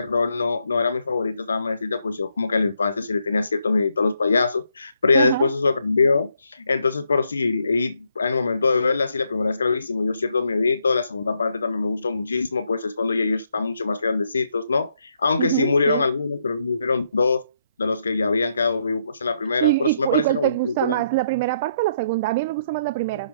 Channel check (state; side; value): inverted; both; correlation -0.75